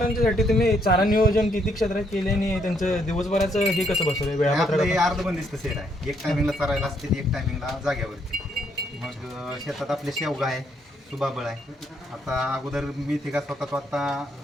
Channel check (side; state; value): both; normal; correlation 0.72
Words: तुम्ही चारा नियोजन किती क्षेत्रात केले आणि त्यांचं दिवसभराचं हे कसं बसवलं वेळापत्रक? आपलं अर्धबंदिस्त सेट आहे. एक टायमिंगला चरायला असते, एक टायमिंगला जाग्यावरती. मग शेतात आपले शेवगा आहे, सुबाबळ आहे. आता अगोदर मी ते का स्वतः आता